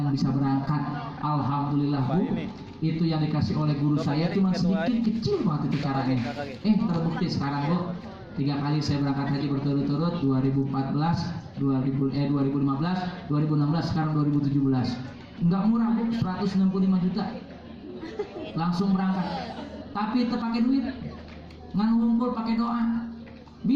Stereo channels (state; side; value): identical; both; correlation 1.00